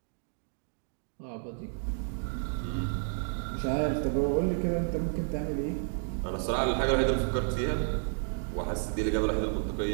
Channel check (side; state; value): left; silent; digital silence